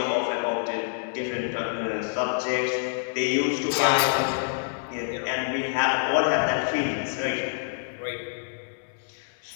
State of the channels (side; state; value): right; silent; 60 dB below the other